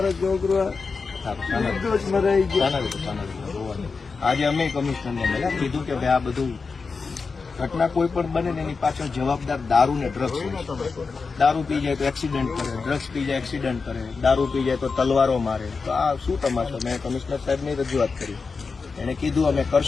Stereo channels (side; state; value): right; quieter; 4.7 dB